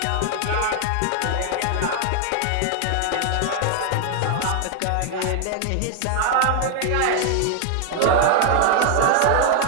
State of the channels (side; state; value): both; different; correlation 0.00